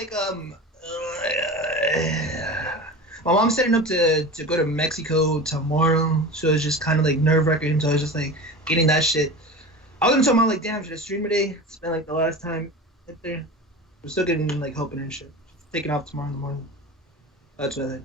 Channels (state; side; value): normal; both; correlation 0.31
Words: my mom's setting up to go to Mexico tomorrow, so it's just kind of like nerve-wracking. So I was just like getting that shit. I was gonna tell mom like, damn, should I stream today? It's been like the last time up there. We're still getting like helping and shit. Just taking off tomorrow in the morning. That's what I